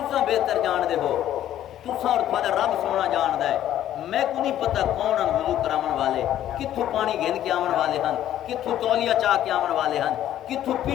بہتر جان دے ہو تساں اور تھوڑا رب سونا جان دے میں کو نہیں پتہ کون ہیں وضو کرامن والے کتھوں پانی گھن کے آمن والے ہیں کتھوں تولیہ چاہ کے آمن والے ہیں کتھوں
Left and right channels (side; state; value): right; quieter; 11.9 dB